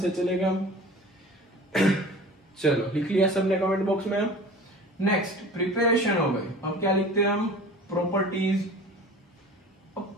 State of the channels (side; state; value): both; normal; correlation 0.40